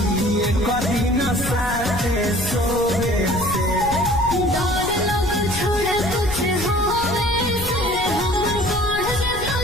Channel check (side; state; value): left; noise; rumble, 9 dB below the sound